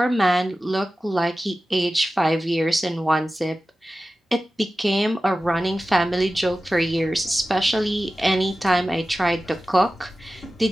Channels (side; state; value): both; normal; correlation 0.95